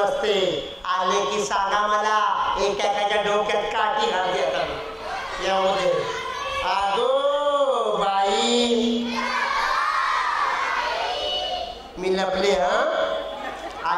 नसते. आले की सांगा मला, एकाच्या डोक्यात काठी घालते आता यामध्ये. अगो बाई मी लपले.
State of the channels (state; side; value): identical; both; correlation 1.00